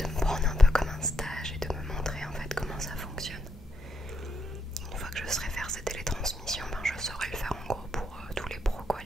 me prendre un peu comme un stage et de me montrer en fait comment ça fonctionne. Une fois que je saurai faire ces télétransmissions, je saurai le faire en gros pour tous les pros, quoi,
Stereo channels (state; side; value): normal; both; correlation 0.77